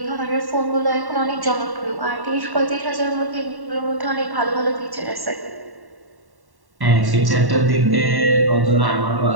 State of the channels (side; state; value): left; late; 1.1 ms